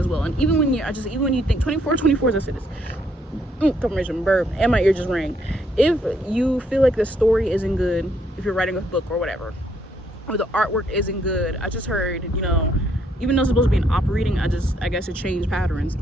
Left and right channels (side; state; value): both; normal; correlation 0.71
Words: well. And even when you think 24 as I said this, confirmation burp, and my ear just rang. If you feel like the story isn't good, if you're writing a book or whatever, or the artwork isn't good. I just heard, you know, even though it's supposed to be an operating, I guess it changed patterns.